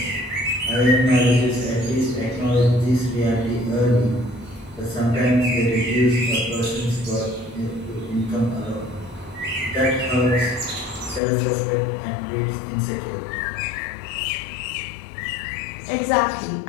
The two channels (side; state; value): right; drops out; at 11.2 s